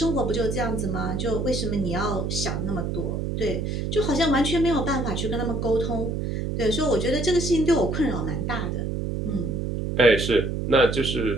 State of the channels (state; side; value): noise; right; hum, 2 dB below the sound